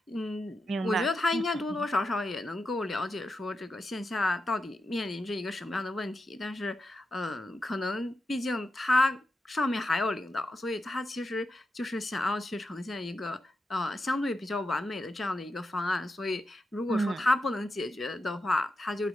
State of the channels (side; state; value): both; normal; correlation 0.87